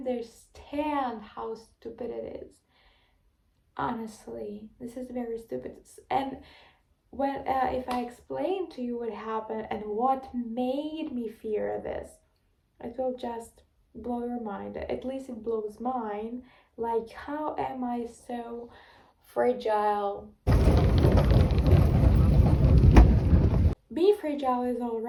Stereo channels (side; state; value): both; identical; correlation 1.00